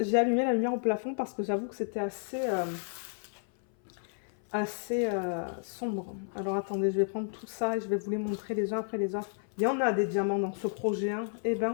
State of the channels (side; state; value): right; silent; 57 dB below the other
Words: allumé la lumière au plafond parce que j'avoue que c'était assez sombre. Alors attendez, je vais prendre tout ça et je vais vous les montrer les uns après les autres. Il y en a des diamants dans ce projet, hein. Eh